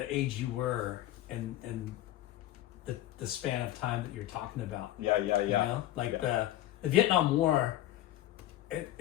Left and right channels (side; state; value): right; quieter; 14.0 dB